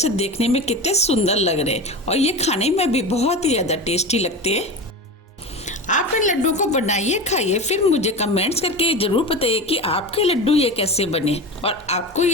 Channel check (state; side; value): normal; both; correlation 0.26